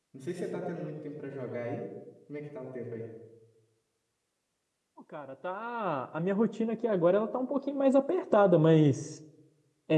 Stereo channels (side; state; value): both; identical; correlation 1.00